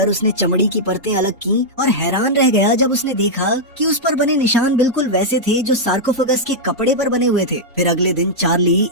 उसने चमड़ी की परतें अलग की और हैरान रह गया जब उसने देखा कि उस पर बने निशान बिल्कुल वैसे थे जो सार्कोफेगस के कपड़े पर बने हुए थे। फिर अगले दिन चार्ली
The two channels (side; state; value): both; normal; correlation -0.06